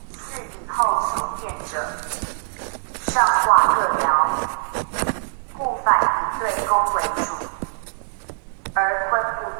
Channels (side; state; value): left; silent; digital silence